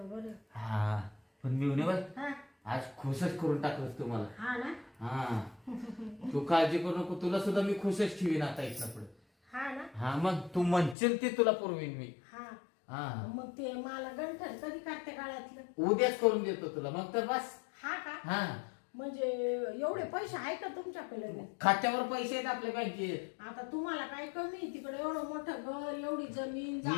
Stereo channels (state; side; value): drops out; right; at 11.0 s